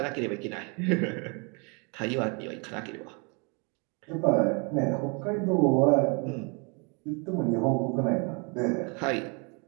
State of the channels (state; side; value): quieter; left; 33.0 dB